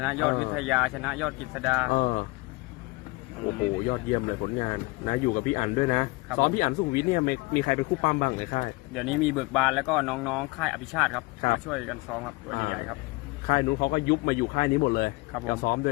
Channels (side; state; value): right; quieter; 24.2 dB